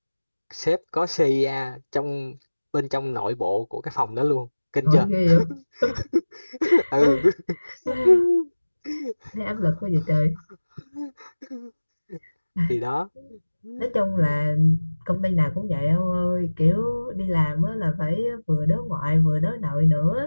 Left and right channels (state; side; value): inverted; both; correlation -1.00